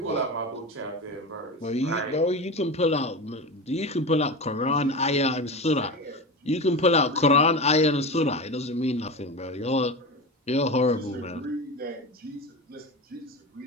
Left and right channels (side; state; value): both; normal; correlation 0.24